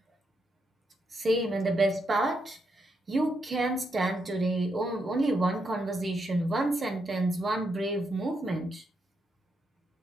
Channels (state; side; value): normal; both; correlation 0.81